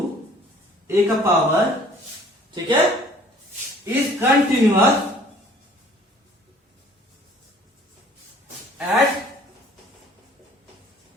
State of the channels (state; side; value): normal; both; correlation 0.53